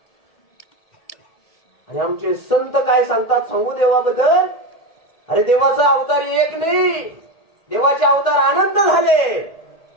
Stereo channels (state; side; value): late; right; 1.7 ms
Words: आणि आमचे संत काय सांगतात सांगू देवाबद्दल? अरे देवाचा अवतार एक नाही, देवाचे अवतार अनंत झाले.